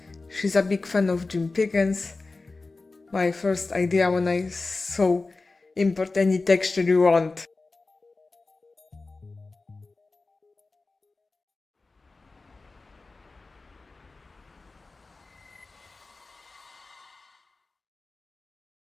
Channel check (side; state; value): right; quieter; 3.6 dB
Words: She's a big fan of Jim Pickens. My first idea when I saw import any texture you want.